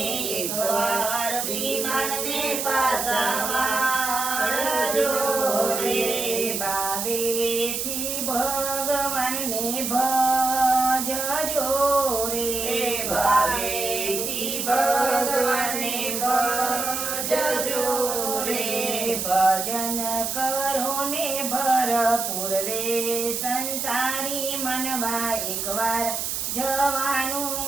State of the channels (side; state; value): right; noise; hiss, 2 dB below the sound